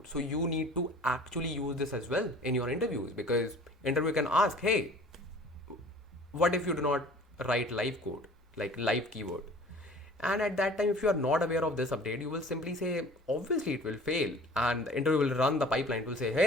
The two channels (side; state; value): both; normal; correlation 0.47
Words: So you need to actually use this as well in your interviews, because interviewer can ask, hey, what if you do not write live code, like live keyword? And at that time, if you are not aware of this update, you will simply say, obviously it will fail. And the interviewer will run the pipeline. It will say,